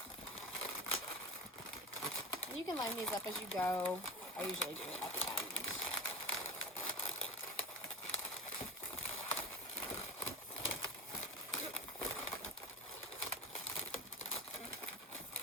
And you can line these up as you go. I usually do it at the end.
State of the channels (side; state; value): both; normal; correlation 0.29